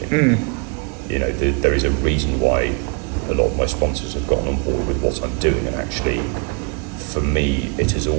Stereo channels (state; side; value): quieter; left; 36.5 dB